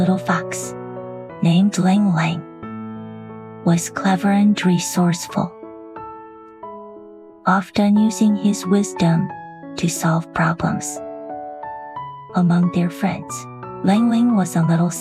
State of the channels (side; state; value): both; identical; correlation 1.00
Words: fox, named Ling Ling, was clever and resourceful, often using his wisdom to solve problems. Among their friends, Ling Ling was a little